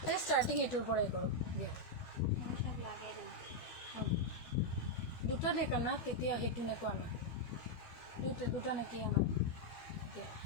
এই ষ্টাৰ্টিং এইটোৰ পৰাই কৰোঁ দিয়া মই সব লাগাই দিম দুটা নেক আনা তেতিয়া সেইটো নেকো আনা দুটা নেকি আনা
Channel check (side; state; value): right; late; 12 ms